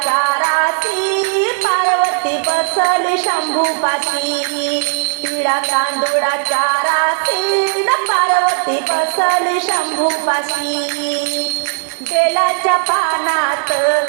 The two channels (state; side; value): silent; left; 59 dB below the other